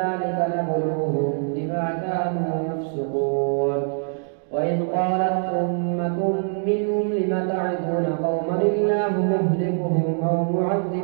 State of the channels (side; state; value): left; silent; 62 dB below the other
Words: نبلوهم بما كانوا يفسقون وإذ قالت أمة منهم لم تعدون قوما الله مهلكهم أو